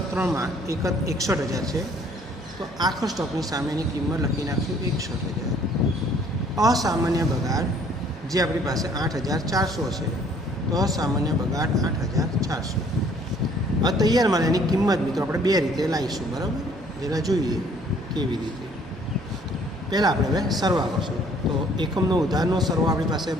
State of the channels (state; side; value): noise; right; hum, 19 dB below the sound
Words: 3માં 61,000 છે તો આખર સ્ટોકની સામેની કિંમત લખી નાખશું 61,000. અસામાન્ય બગાડ જે આપણી પાસે 8,400 છે તો અસામાન્ય બગાડ 8,400. હવે તૈયાર માલ એની કિંમત મિત્રો આપણે બે રીતે લાવીશું, બરાબર. જરા જોઈએ કેવી રીતે. પહેલાં આપણે હવે સરવા કરશું. તો એકમનો ઉધારનો સરવા આપણી પાસે